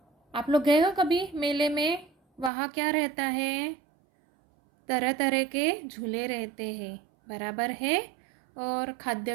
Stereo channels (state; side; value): drops out; left; at 2.5 s